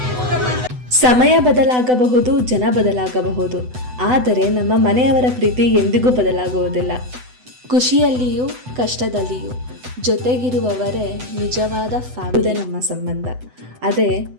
ಸಮಯ ಬದಲಾಗಬಹುದು, ಜನ ಬದಲಾಗಬಹುದು, ಆದರೆ ನಮ್ಮ ಮನೆಯವರ ಪ್ರೀತಿ ಎಂದಿಗೂ ಬದಲಾಗುವುದಿಲ್ಲ. ಖುಷಿಯಲ್ಲಿಯೂ ಕಷ್ಟದಲ್ಲಿಯೂ ಜೊತೆಗಿರುವವರೇ ನಿಜವಾದ ಫ್ಯಾಮಿಲಿ. ನಮ್ಮ ಸಂಬಂಧ ಅದೇ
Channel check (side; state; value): left; late; 8.0 ms